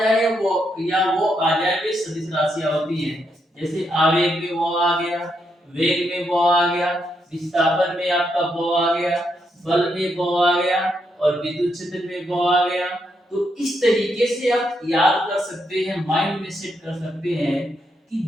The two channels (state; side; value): normal; both; correlation 0.79